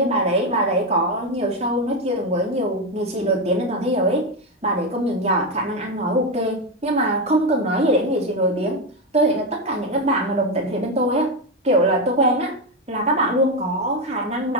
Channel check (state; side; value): normal; both; correlation 0.10